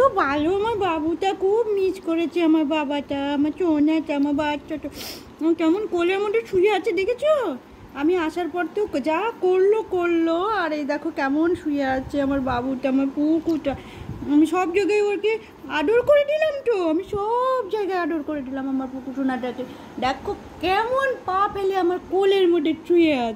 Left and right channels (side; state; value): both; identical; correlation 1.00